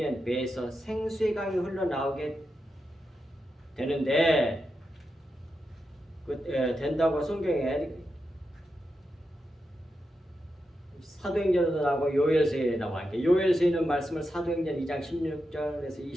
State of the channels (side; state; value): both; normal; correlation 0.87